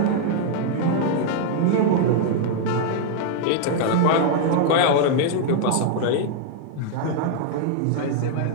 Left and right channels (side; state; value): both; different; correlation -0.01